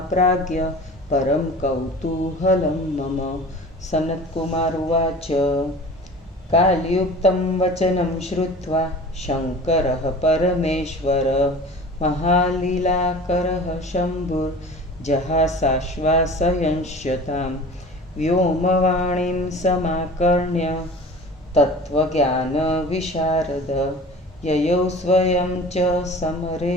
परं कौतूहलं मम। सनत्कुमार उवाच। कालयुक्तं वचनं श्रुत्वा शङ्करः परमेश्वर महालीलाकरः शम्भुर्जहासाश्वासयंश्यतां व्योमवाणीं समाकर्ण्य तत्त्वज्ञानविशारद ययौ स्वयं च समरे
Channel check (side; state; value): both; normal; correlation 0.40